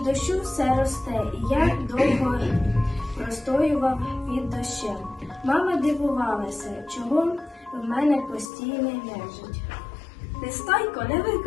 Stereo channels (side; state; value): right; drops out; at 8.5 s